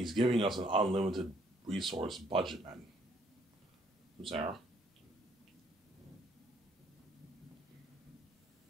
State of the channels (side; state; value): both; normal; correlation 0.66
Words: giving us an unlimited resource budget, man. Sarah?